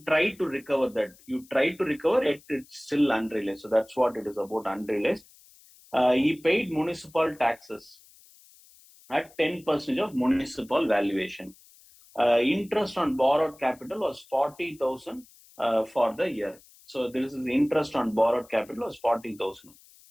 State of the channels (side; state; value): left; noise; hiss, 26 dB below the sound